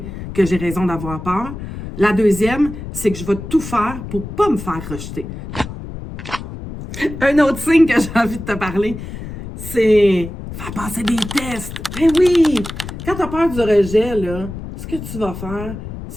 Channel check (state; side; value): noise; left; rumble, 10 dB below the sound